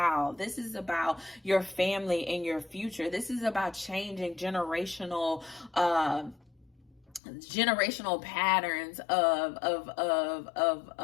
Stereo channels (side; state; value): right; drops out; at 7.2 s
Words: This is about your family and your future. This is about changing generational patterns of